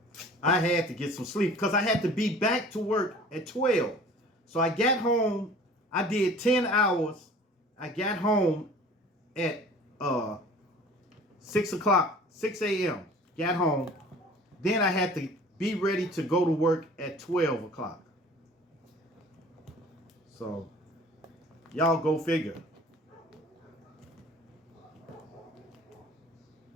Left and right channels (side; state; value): both; normal; correlation 0.46